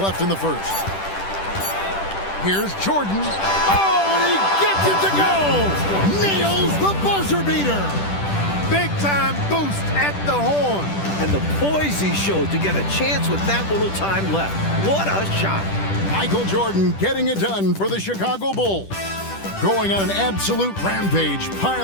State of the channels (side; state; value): right; late; 10 ms